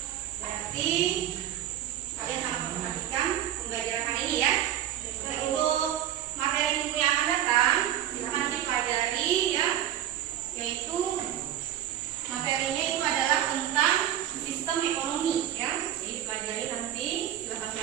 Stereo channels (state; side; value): quieter; left; 11.5 dB